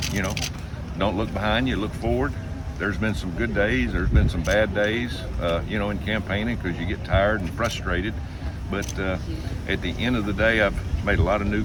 You know, don't look behind you, look forward. There's been some good days, there's been some bad days, you know, in campaigning because you get tired and frustrated. But at the end of the day, I've made a lot of new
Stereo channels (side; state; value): both; identical; correlation 1.00